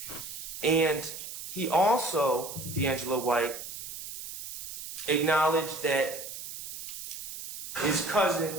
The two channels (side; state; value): right; noise; hiss, 9 dB below the sound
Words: And he also, D'Angelo White, acknowledged that his